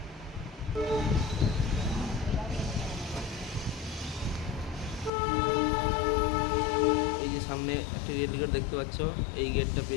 এই যে সামনে একটি রেল গেট দেখতে পাচ্ছ, এই গেটটা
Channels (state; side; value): drops out; right; at 5.1 s